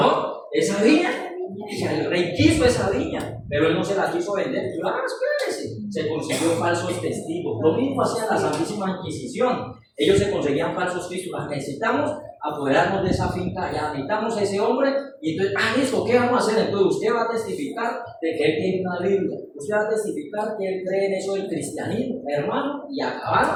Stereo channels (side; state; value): both; identical; correlation 1.00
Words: esa viña, el rey quiso esa viña, pero él no se la quiso vender. Y espérese, se consiguió falsos testigos. Lo mismo hacía la Santísima Inquisición. Ellos se conseguían falsos testigos. Necesitamos apoderarnos de esa finca, ya necesitamos a ese hombre, y entonces, listo, ¿qué vamos a hacer? Entonces usted va a testificar de que él tiene una Biblia, usted va a testificar que él cree en eso del cristianismo, hermano, y